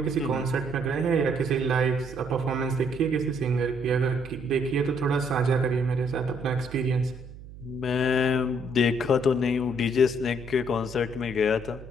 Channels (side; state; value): right; noise; hum, 16 dB below the sound